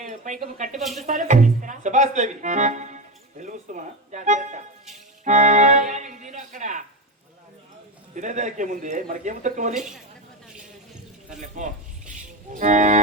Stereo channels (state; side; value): normal; both; correlation 0.17